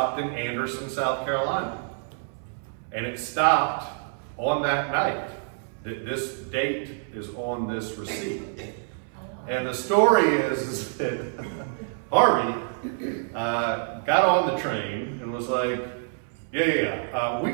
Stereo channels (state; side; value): silent; left; 60 dB below the other